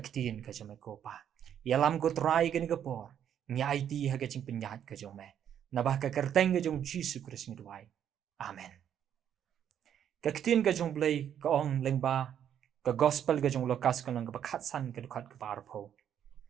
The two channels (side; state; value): left; quieter; 9.4 dB